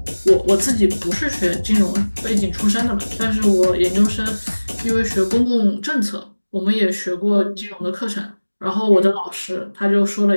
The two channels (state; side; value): inverted; both; correlation -1.00